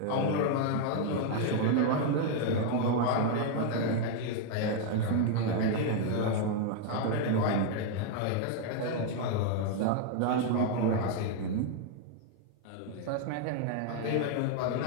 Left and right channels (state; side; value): different; both; correlation 0.00